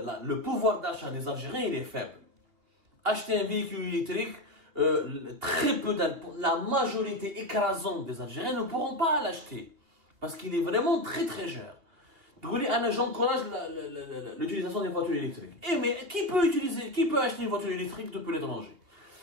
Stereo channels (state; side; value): late; left; 3.0 ms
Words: le pouvoir d'achat des Algériens, il est faible. Acheter un véhicule électrique, très peu la majorité écrasante des Algériens ne pourront pas l'acheter. Parce qu'il est vraiment très très cher. J'encourage l'utilisation des voitures électriques. Mais qui peut acheter une voiture électrique depuis l'étranger?